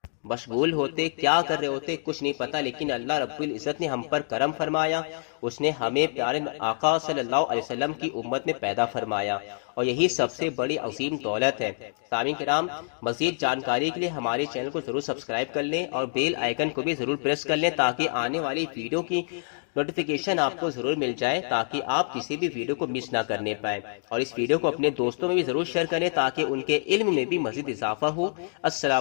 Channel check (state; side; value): silent; right; digital silence